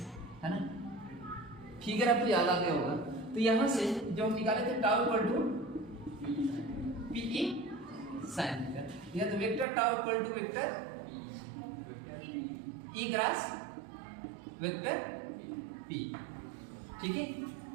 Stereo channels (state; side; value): drops out; left; at 9.7 s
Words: है ना। फिगर आपको याद आ गया होगा। तो यहां से जो हम निकाले थे tau equal to p E sine theta, या तो vector tau equal to vector E cross vector p. ठीक है,